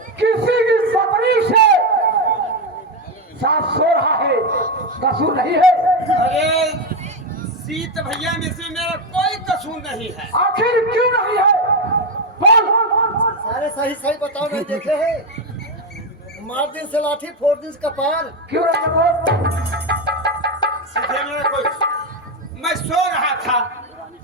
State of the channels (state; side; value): normal; both; correlation 0.09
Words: किसी की पत्नी से साथ सो रहा है, कसूर नहीं है? अरे सीत भैया में से मेरा कोई कसूर नहीं है। आखिर क्यों नहीं है? बोल। सारे सही सही बताओ, नहीं देखे हैं? मार दिन से लाठी फोड़ दिन से कपार। क्यों नहीं बोल? सीधे मेरा कोई, मैं सो रहा था,